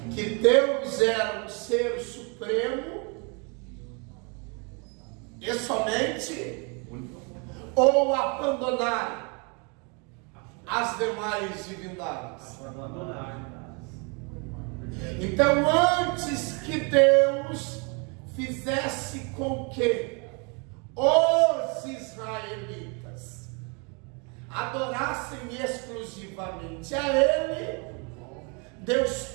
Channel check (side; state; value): left; quieter; 33.4 dB